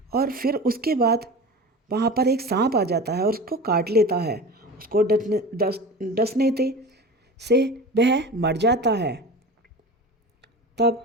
और फिर उसके बाद वहाँ पर एक सांप आ जाता है और उसको काट लेता है। उसको डसने से वह मर जाता है। तब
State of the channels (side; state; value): both; normal; correlation 0.33